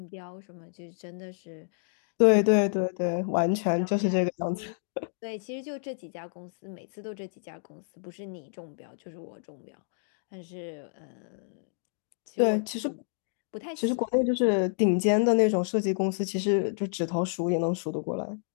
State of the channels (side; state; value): right; silent; digital silence